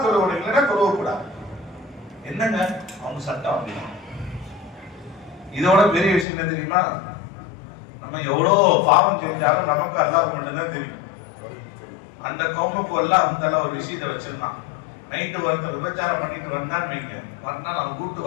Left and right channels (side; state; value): right; drops out; at 6.2 s